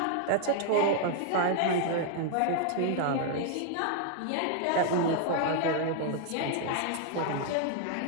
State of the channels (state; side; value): different; both; correlation -0.01